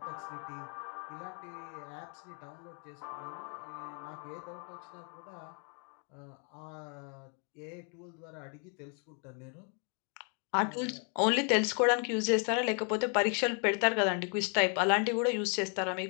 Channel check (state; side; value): quieter; right; 39.5 dB